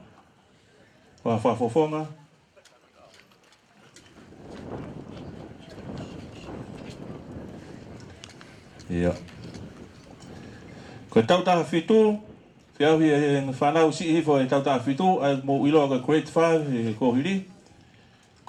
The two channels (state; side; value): identical; both; correlation 1.00